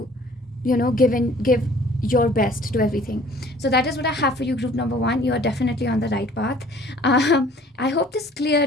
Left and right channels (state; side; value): normal; both; correlation 0.53